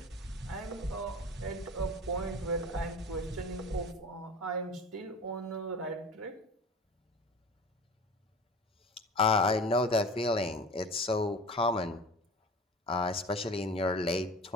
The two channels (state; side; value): normal; both; correlation 0.37